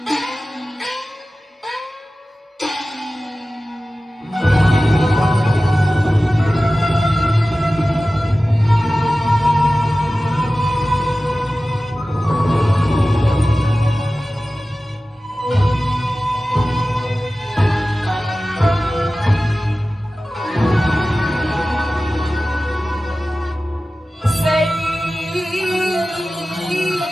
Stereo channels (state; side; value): normal; both; correlation 0.96